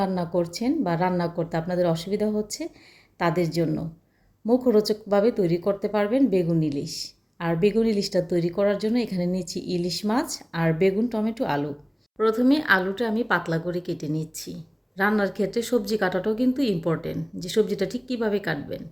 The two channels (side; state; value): both; identical; correlation 1.00